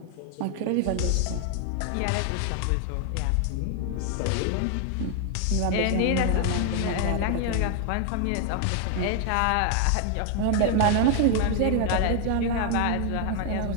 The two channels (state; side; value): different; both; correlation 0.00